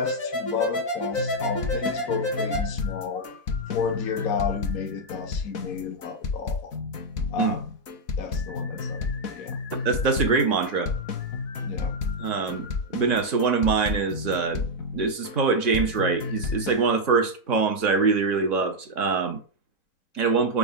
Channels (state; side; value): late; right; 3.6 ms